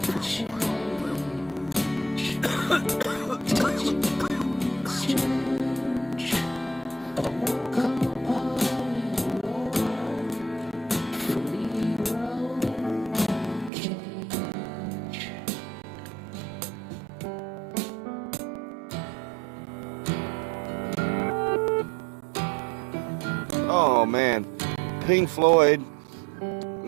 Oh man, Pink Floyd,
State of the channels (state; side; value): drops out; left; at 13.7 s